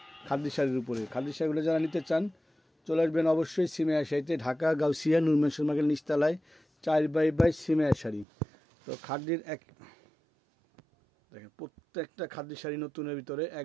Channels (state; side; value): drops out; left; at 8.2 s